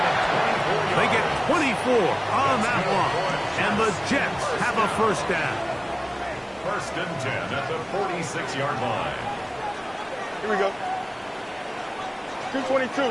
They get 24 on that one. And the Jets have a first down. 1st and 10 at the 46-yard line. Here we go.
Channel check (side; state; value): both; identical; correlation 1.00